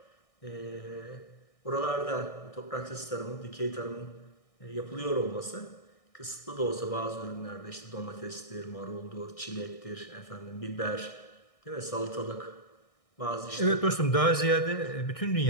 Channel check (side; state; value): right; late; 1.6 ms